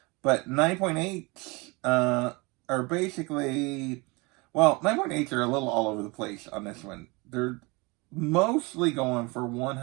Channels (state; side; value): quieter; left; 26.5 dB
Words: but 9.8s are basically, well, 9.8s are a little all over the place on this one. They're mostly going for